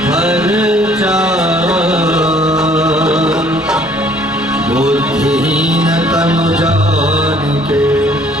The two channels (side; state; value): both; normal; correlation 0.59